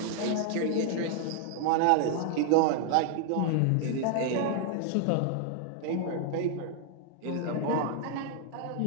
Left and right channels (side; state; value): both; different; correlation 0.00